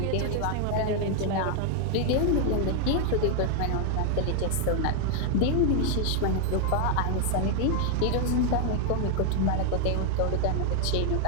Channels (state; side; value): different; both; correlation 0.00